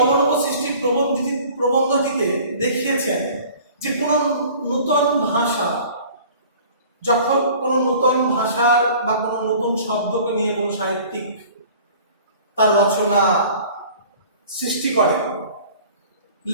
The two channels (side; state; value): both; inverted; correlation -0.47